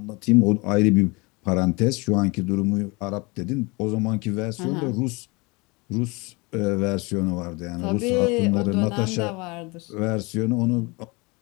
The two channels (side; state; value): right; quieter; 26.8 dB